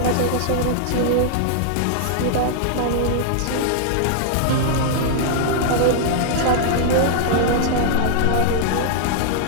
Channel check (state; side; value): different; both; correlation -0.01